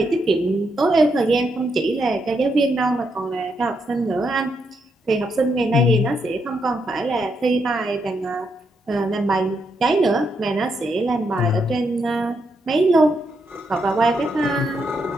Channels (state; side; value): normal; both; correlation 0.80